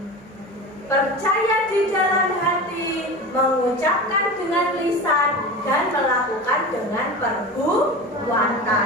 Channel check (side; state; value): both; normal; correlation 0.29